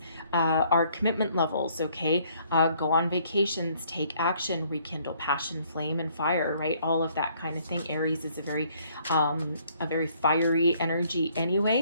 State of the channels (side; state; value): both; inverted; correlation -0.63